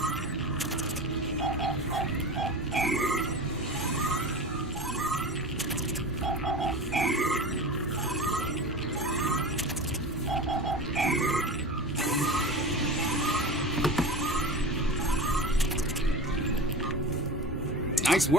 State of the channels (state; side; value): normal; both; correlation 0.31